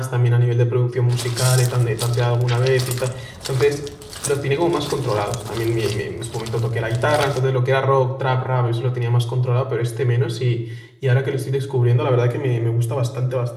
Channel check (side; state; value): both; identical; correlation 1.00